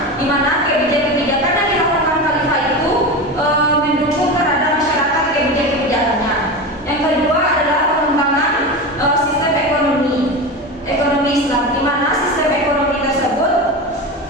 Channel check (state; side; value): normal; both; correlation 0.24